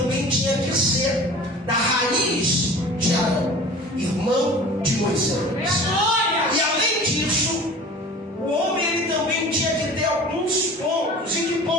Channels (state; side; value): normal; both; correlation 0.41